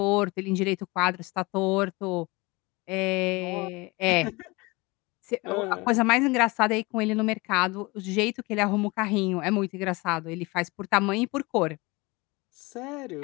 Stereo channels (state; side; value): quieter; right; 24.4 dB